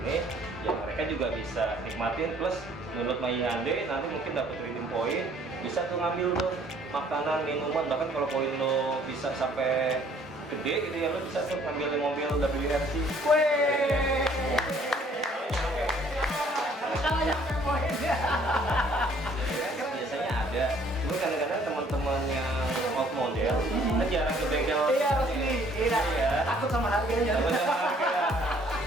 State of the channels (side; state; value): both; normal; correlation 0.59